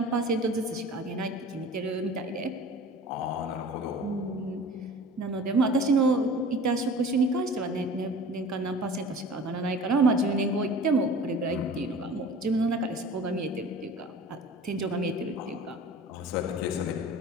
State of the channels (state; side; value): normal; both; correlation 0.41